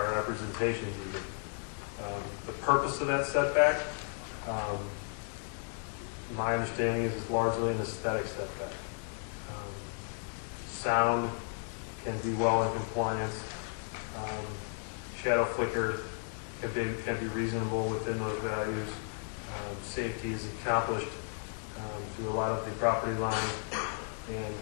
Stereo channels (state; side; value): silent; right; 55 dB below the other